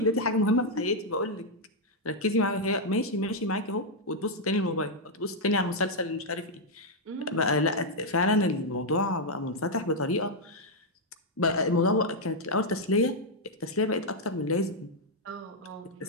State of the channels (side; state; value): both; normal; correlation -0.03